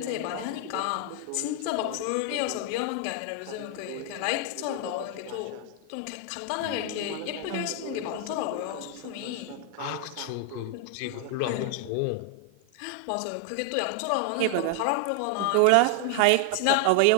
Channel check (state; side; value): different; both; correlation 0.00